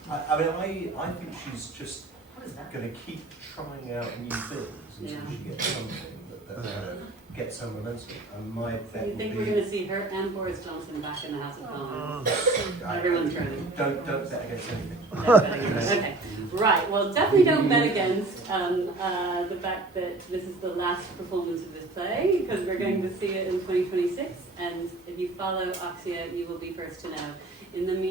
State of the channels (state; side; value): quieter; left; 3.1 dB